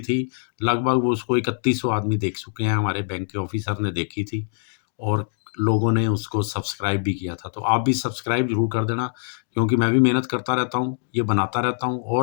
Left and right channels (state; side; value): silent; right; digital silence